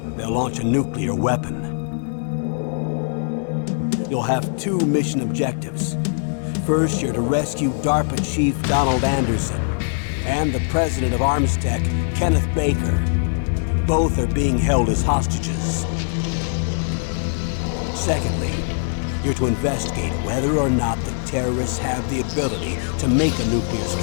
they'll launch a nuclear weapon. You'll have two mission objectives. First, you're to rescue DARPA Chief Donald Anderson and the president of Armstech, Kenneth Baker. Both are being held as hostages. Secondly, you're to investigate whether or not the terrorists have the ability to make a nuclear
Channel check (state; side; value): silent; right; digital silence